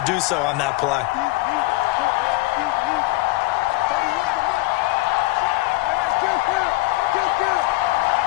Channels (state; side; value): quieter; right; 21.0 dB